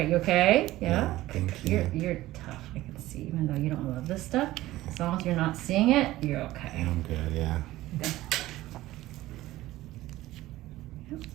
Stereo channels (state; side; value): quieter; left; 16.5 dB